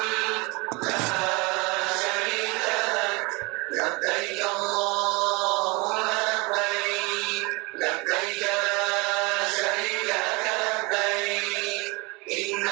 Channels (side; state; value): left; quieter; 26.6 dB